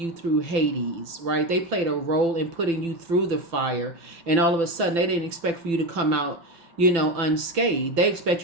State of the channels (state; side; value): late; left; 5.9 ms